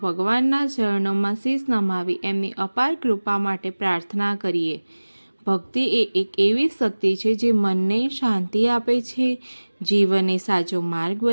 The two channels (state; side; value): inverted; both; correlation -1.00